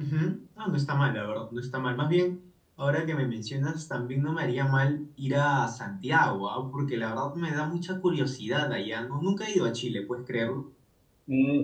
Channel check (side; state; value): both; identical; correlation 1.00